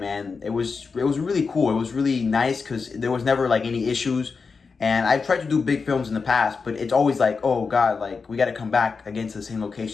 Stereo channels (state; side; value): quieter; right; 4.9 dB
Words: and it was really cool. It was really nice because there was never like any issues. And I've tried to do big films in the past, but it's always like, oh God, like we got to come back again to the same